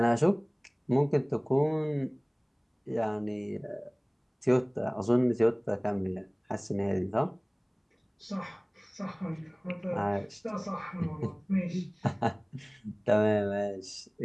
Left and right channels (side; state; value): both; identical; correlation 1.00